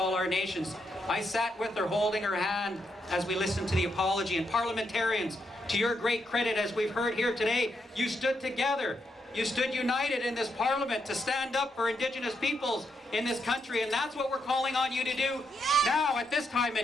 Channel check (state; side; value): normal; both; correlation 0.80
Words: our nations. I sat with her, holding her hand as we listened to the apology. And parliamentarians, to your great credit, as we've heard here today, you stood together. You stood united in this parliament to stand up for Indigenous peoples in this country, and that's what we're calling on you to do now at this time